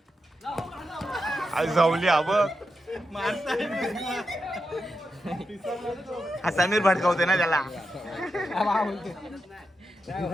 आज जाऊली अब हा समीर भडकावते ना त्याला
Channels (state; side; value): normal; both; correlation 0.87